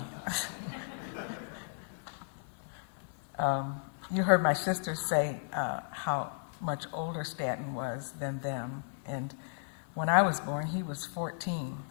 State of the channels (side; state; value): right; silent; 55 dB below the other